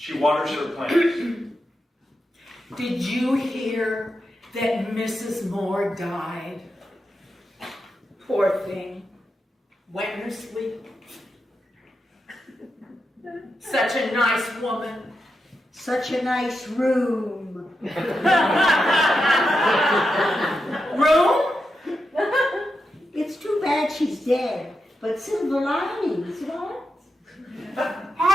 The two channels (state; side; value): normal; both; correlation 0.87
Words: waters her plants. Did you hear that Mrs. Moore died? Poor thing. Went in her sleep. Such a nice woman. Such a nice room. Room? It's too bad she's dead, but silver linings, what? How